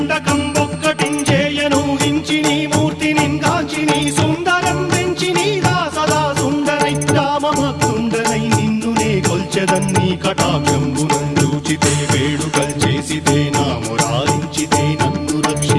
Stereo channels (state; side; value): identical; both; correlation 1.00